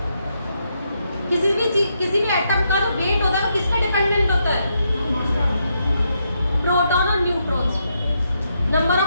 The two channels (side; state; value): both; inverted; correlation -0.80